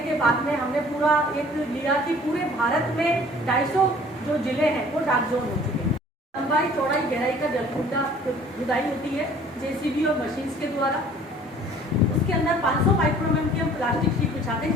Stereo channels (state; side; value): normal; both; correlation 0.52